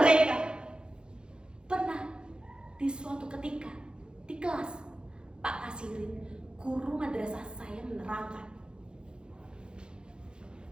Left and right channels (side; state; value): left; late; 0.049 ms